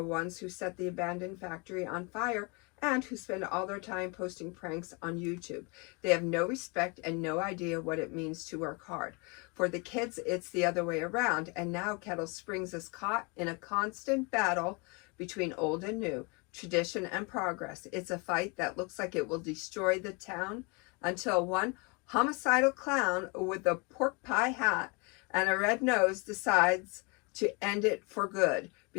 ones who set the abandoned factory on fire and who spend all their time posting pranks on YouTube. They have no respect and no idea what it means to work hard. For the kids, it's the other way around, and now Kettle Springs is caught in a constant battle between old and new, tradition and progress. It's a fight that looks like it will destroy the town until one homicidal clown with a pork pie hat and a red nose decides to end it for good.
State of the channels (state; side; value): quieter; right; 30.7 dB